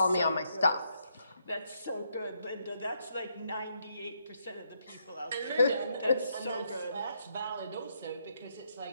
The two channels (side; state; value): both; inverted; correlation -0.76